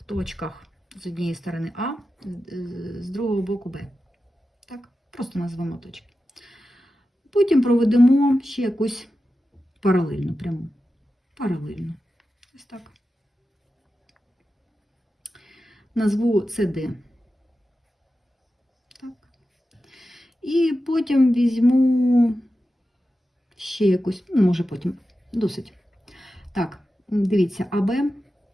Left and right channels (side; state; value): both; normal; correlation 0.92